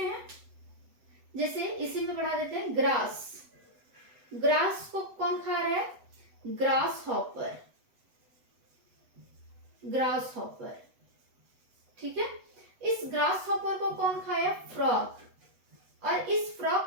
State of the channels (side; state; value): left; late; 8.0 ms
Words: हैं, जैसे इसी में बढ़ा देते हैं, ग्रास, ग्रास को कौन खा रहा है, ग्रास हॉपर, ग्रास हॉपर। ठीक है, इस ग्रास हॉपर को कौन खाया, फ्रॉग, और इस फ्रॉग